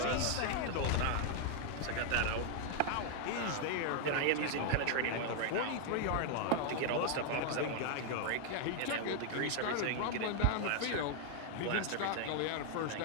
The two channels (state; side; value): different; both; correlation 0.00